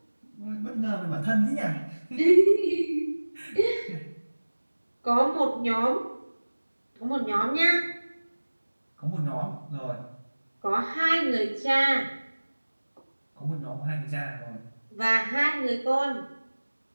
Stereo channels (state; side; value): inverted; both; correlation -1.00